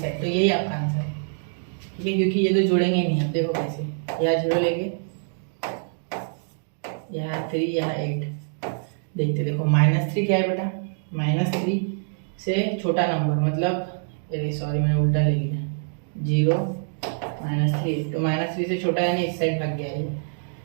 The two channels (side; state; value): left; silent; digital silence